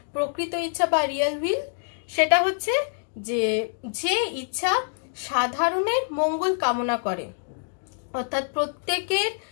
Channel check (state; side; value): silent; right; digital silence